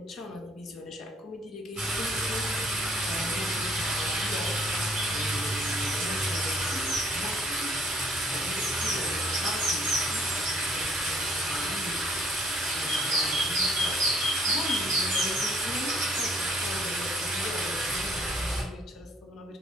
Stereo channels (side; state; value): both; normal; correlation 0.63